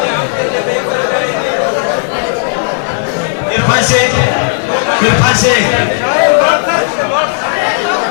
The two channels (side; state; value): right; silent; digital silence